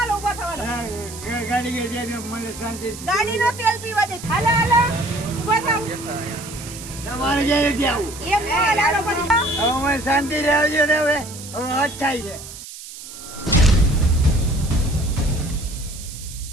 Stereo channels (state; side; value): noise; right; hiss, 14 dB below the sound